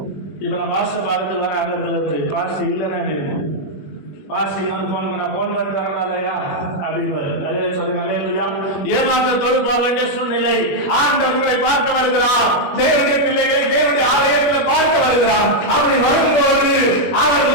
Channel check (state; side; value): late; right; 21 ms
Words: இப்ப நான் பாஸ்ட பார்த்து வர அங்க பாஸ்ட் இல்லைன்னா எப்படி இருக்கும்? பாஸ்டிங் வந்து போன் பண்ண போன் பண்ணிட்டு வரக்கூடாதையா அப்படின்னு அதே சொல்லுங்க. அல்லேலூயா. ஏமாற்றத்தோடு போக வேண்டிய சூழ்நிலை. ஆண்டவர் உங்களை பார்க்க வருகிறார். தேவனுடைய பிள்ளைகளை தேவனுடைய ஆலயத்தில் பார்க்க வருகிறார். அப்படி வரும்போது அவர்